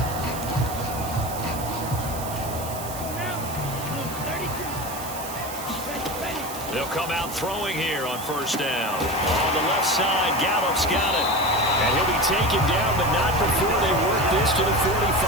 They'll come out throwing here on first down. On the left side, Gallup's got it. And he'll be taken down, but not before they work this to the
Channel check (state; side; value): noise; right; hiss, 11 dB below the sound